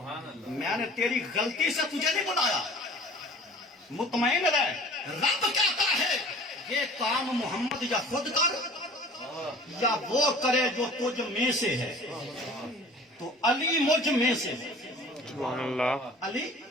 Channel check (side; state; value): both; normal; correlation 0.47